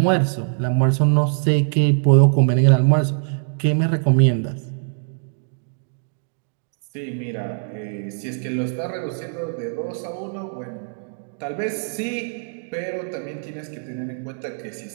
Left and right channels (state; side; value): silent; left; digital silence